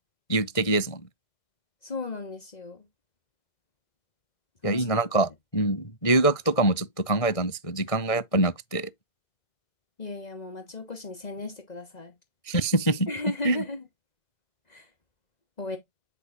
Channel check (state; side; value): late; right; 1.6 ms